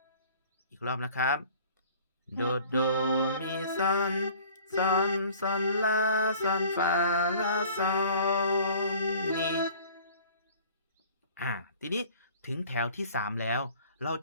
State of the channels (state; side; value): inverted; both; correlation -0.49